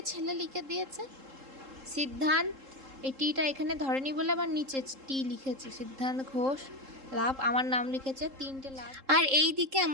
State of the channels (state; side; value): late; left; 3.7 ms